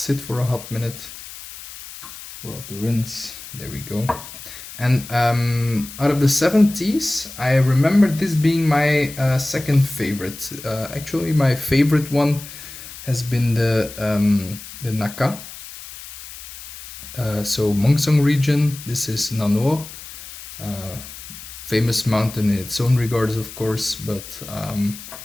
for a hot minute. Pour off the rinse. There we go. And out of the 7 teas, I remember this being my second favorite. Actually, my favorite one has been the Naka. So Mongsong region. This is Nano, famous mountain in its own regards, of course. But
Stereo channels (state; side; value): noise; left; hiss, 14 dB below the sound